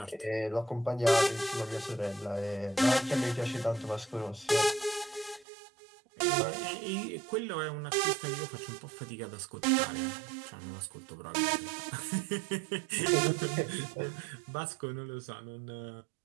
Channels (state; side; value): drops out; left; at 5.5 s